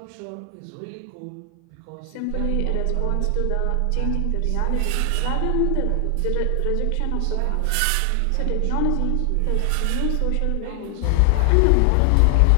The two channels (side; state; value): both; different; correlation 0.00